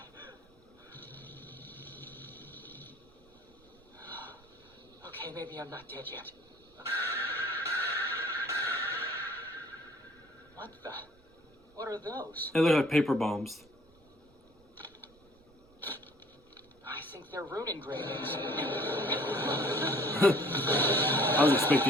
Okay, maybe I'm not dead yet. What the? What are those? They look like paper bombs. I think they're rune engravings. I was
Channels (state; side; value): noise; right; rumble, 29 dB below the sound